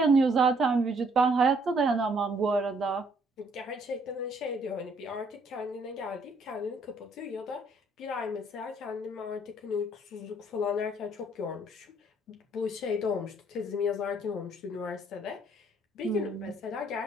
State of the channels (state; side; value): normal; both; correlation 0.65